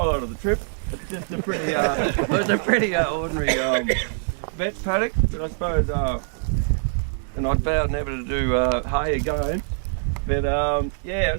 of the trip. It's just a pretty, it's a pretty ordinary vet paddock. But I suppose, and I'd vowed never to do hay again. But yeah,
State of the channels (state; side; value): silent; left; digital silence